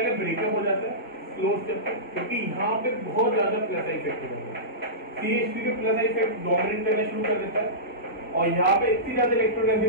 ब्रेकअप हो जाता है स्लो स्टेप पे, क्योंकि यहाँ पे बहुत ज्यादा प्लस इफेक्ट होता है। CH3 के प्लस इफेक्ट डोमिनेट करना शुरू कर देता है और यहाँ पे इतनी ज्यादा इलेक्ट्रॉन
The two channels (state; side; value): normal; both; correlation -0.19